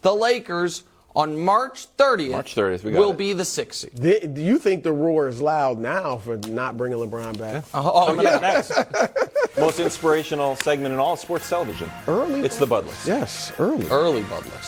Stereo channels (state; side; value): identical; both; correlation 1.00